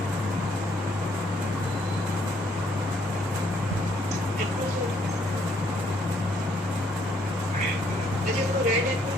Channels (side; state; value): both; normal; correlation 0.68